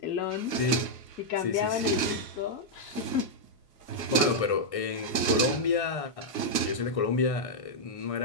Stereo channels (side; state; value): right; late; 1.3 ms